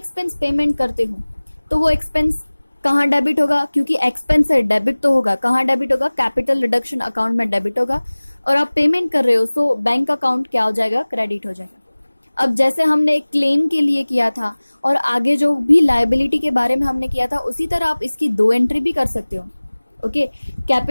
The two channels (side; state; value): both; inverted; correlation -1.00